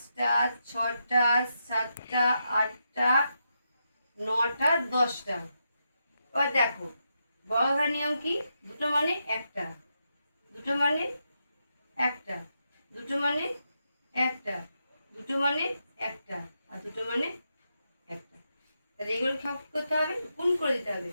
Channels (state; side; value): inverted; both; correlation -0.84